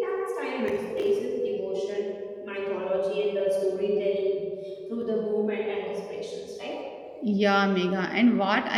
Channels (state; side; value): identical; both; correlation 1.00